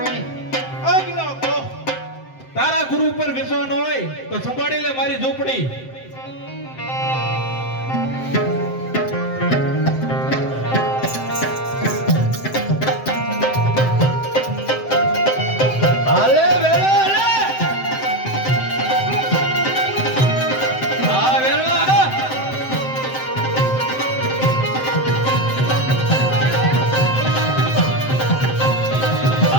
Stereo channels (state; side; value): late; right; 7.7 ms